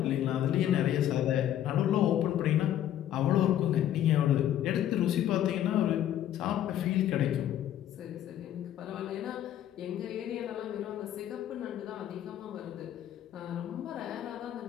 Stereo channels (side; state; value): right; quieter; 11.4 dB